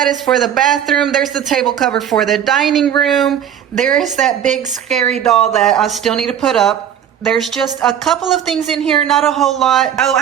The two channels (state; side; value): quieter; left; 9.4 dB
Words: is for the bathroom. There's the table cover for the dining room. There is that big scary doll that I still need to put up. There's just a couple of things in here, not a whole lot. Oh,